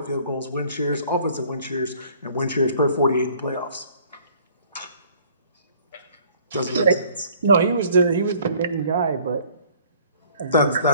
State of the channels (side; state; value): both; inverted; correlation -0.56